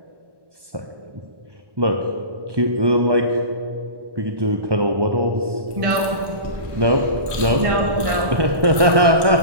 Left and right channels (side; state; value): left; late; 1.1 ms